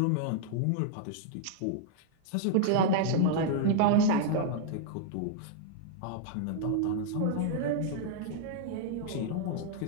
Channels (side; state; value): both; different; correlation -0.01